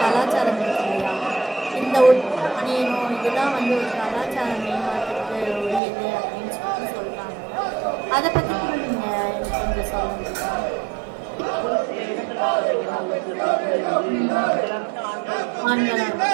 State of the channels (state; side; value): drops out; left; at 5.8 s